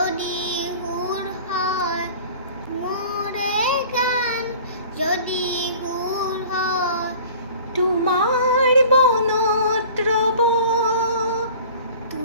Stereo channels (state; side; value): inverted; both; correlation -0.45